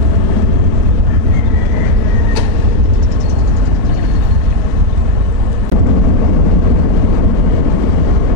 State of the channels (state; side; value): late; left; 4.6 ms